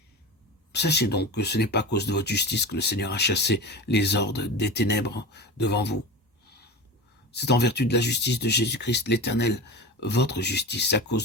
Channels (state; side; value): normal; both; correlation 0.28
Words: Sachez donc que ce n'est pas à cause de votre justice que le Seigneur a chassé les hordes des ténèbres devant vous. C'est en vertu de la justice de Jésus-Christ l'Éternel, votre justice, à